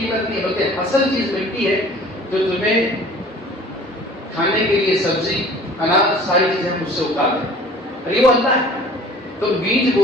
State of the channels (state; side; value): normal; both; correlation 0.48